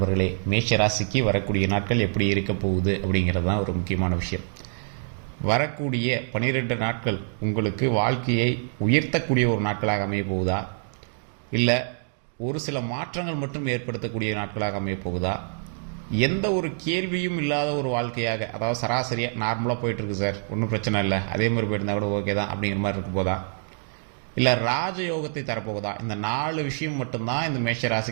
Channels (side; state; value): left; silent; digital silence